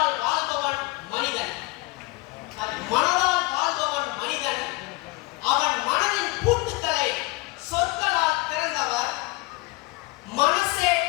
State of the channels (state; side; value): quieter; right; 23.3 dB